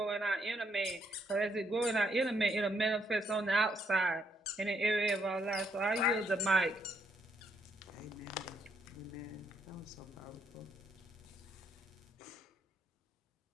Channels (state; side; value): normal; both; correlation 0.74